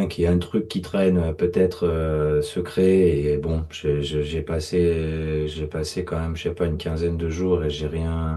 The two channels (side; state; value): both; identical; correlation 1.00